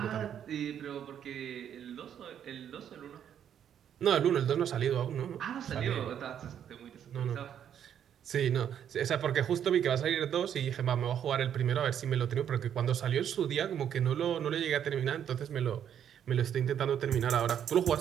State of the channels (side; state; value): left; quieter; 9.3 dB